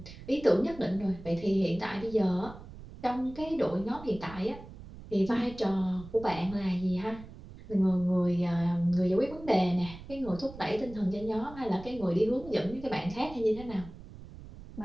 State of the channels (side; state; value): right; noise; rumble, 16 dB below the sound